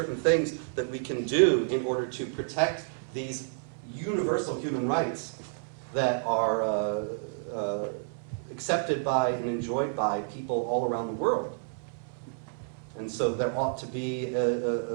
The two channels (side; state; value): left; silent; 58 dB below the other